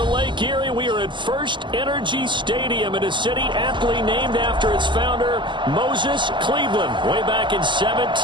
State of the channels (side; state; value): left; late; 0.23 ms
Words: Lake Erie, we are at First Energy Stadium in a city aptly named after its founder, Moses Cleveland, way back in